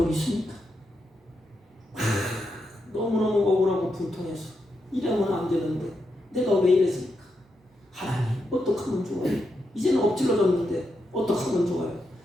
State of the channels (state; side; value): normal; both; correlation 0.84